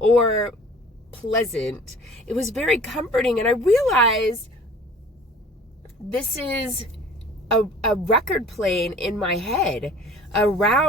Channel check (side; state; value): both; normal; correlation 0.47